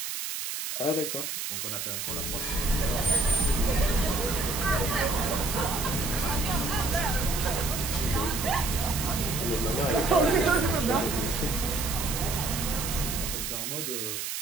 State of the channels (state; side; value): noise; right; hiss, 4 dB below the sound